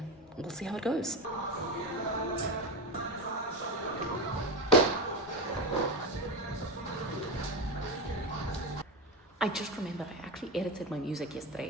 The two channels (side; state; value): both; normal; correlation 0.18